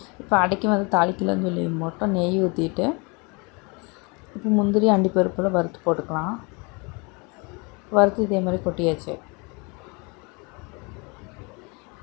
இப்போ அடைக்கி வந்து தாளிக்கலன்னு சொல்லி மட்டும் நெய் ஊற்றிட்டு இப்போ முந்திரி அண்டிப்பருப்பில் வறுத்து போட்டுக்கலாம். வறுத்து இதேமாதிரி கொட்டியாச்சு.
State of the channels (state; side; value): quieter; right; 29.9 dB